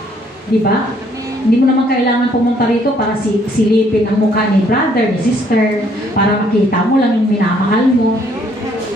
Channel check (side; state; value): both; normal; correlation 0.65